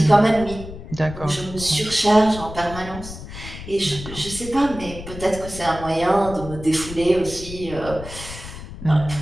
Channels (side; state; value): left; noise; rumble, 12 dB below the sound